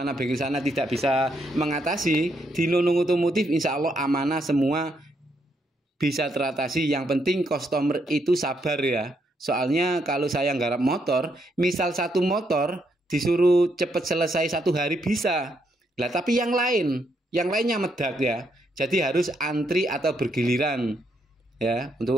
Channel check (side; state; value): both; normal; correlation 0.76